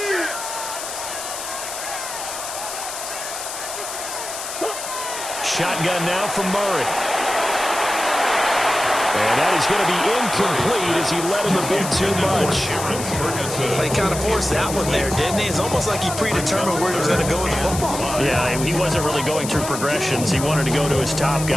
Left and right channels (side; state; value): left; noise; hiss, 7 dB below the sound